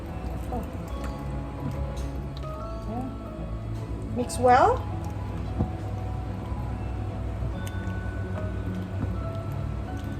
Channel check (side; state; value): both; identical; correlation 1.00